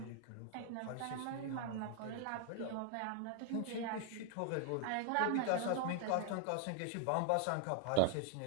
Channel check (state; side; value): different; both; correlation 0.00